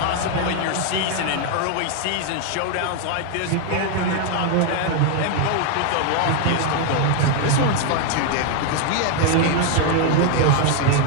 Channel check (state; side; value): different; both; correlation 0.01